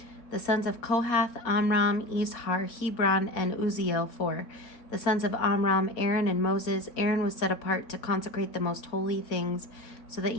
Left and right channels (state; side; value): late; right; 4.3 ms